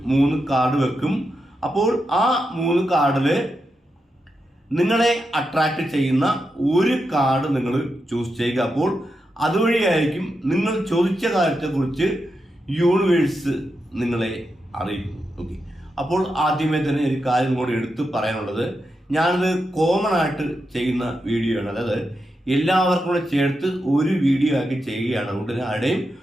3 കാർഡ് വെക്കും. അപ്പോൾ ആ 3 കാർഡിൽ നിങ്ങളെ അട്രാക്ട് ചെയ്യുന്ന ഒരു കാർഡ് നിങ്ങൾ ചൂസ് ചെയ്യുക. അപ്പോൾ അതുവഴിയായിരിക്കും നിങ്ങൾ ചോദിച്ച കാര്യത്തെക്കുറിച്ച് യൂണിവേഴ്സ് നിങ്ങളെ അറിയിക്കും. ഓക്കെ, അപ്പോൾ ആദ്യമേ തന്നെ ഒരു കാര്യം കൂടി എടുത്ത് പറയാനുള്ളത്, ഞാനത് കോമൺ ആയിട്ട് ചെയ്യുന്ന വീഡിയോ ആണ്. അതായത് എല്ലാവർക്കും കൂടെ ചേർത്ത് ഒരു വീഡിയോ ആക്കി ചെയ്യുകയാണ്. അതുകൊണ്ട് തന്നെ ആരുടെയും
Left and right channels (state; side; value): normal; both; correlation 0.87